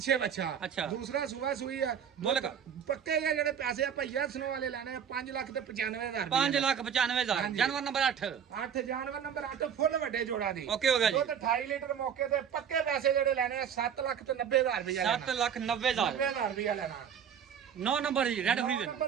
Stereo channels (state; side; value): quieter; left; 8.2 dB